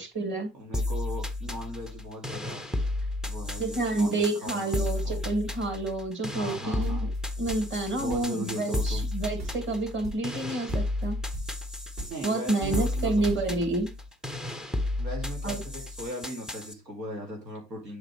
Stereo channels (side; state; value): both; normal; correlation 0.61